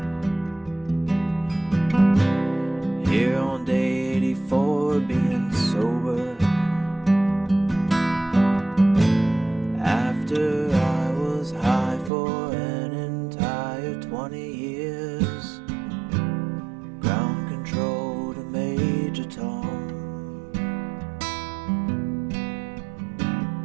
Here on day 84, being sober. After I was high for an entire 20 years. Ground control to Major Tom.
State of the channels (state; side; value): drops out; left; at 12.1 s